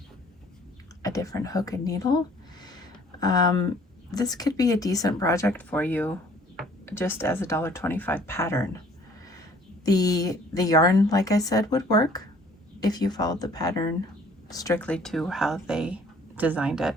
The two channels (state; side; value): normal; both; correlation 0.56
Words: a different hook and needle, this could be a decent project for you just as a $1.25 pattern. The yarn, like I said, would work if you followed the pattern strictly to how they designed it.